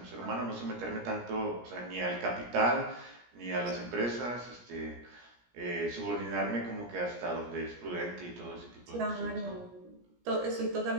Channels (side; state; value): left; late; 17 ms